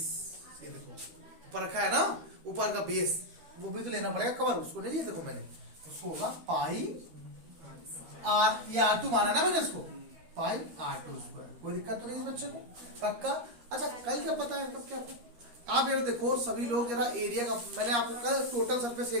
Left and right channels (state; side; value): late; left; 13 ms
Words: ये देखो ऊपर रखा है ना, ऊपर का बेस वो भी तो लेना पड़ेगा कवर, उसको नहीं लिया, देखो मैंने उसको होगा पाई आर, ये R2 माना ना मैंने इसको, पाई R2 स्क्वायर, कोई दिक्कत तो नहीं इस बच्चे को, पक्का। अच्छा कल क्या पता है, कब क्या आप ये देखो सभी लोग जरा एरिया का, मैंने आपको कहा टोटल सरफेस